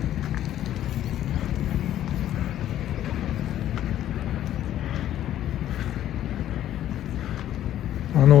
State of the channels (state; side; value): quieter; right; 12.1 dB